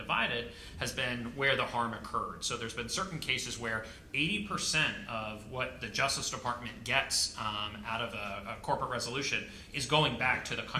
has been where the harm occurred. So there's been certain cases where 80% of what the Justice Department gets out of a corporate resolution is going back to the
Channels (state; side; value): identical; both; correlation 1.00